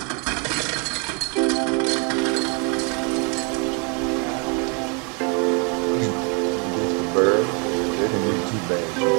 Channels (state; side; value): quieter; left; 34.8 dB